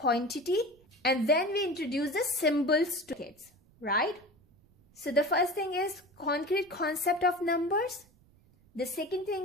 and then we introduce the symbols to kids, right? So the first thing is concrete concept of numbers. The second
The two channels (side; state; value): right; noise; rumble, 30 dB below the sound